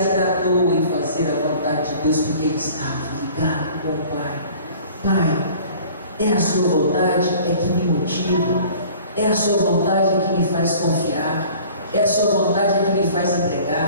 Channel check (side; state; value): both; inverted; correlation -0.48